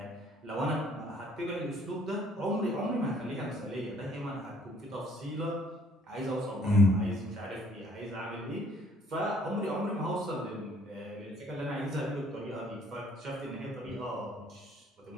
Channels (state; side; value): normal; both; correlation 0.61